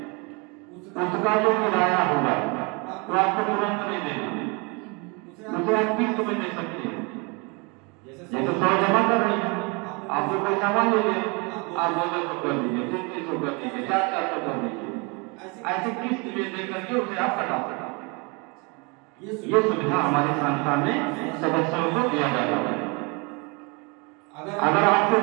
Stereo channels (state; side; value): quieter; left; 30.5 dB